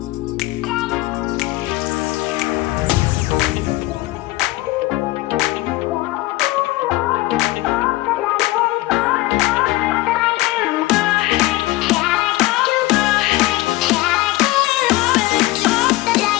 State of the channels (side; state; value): right; quieter; 18.7 dB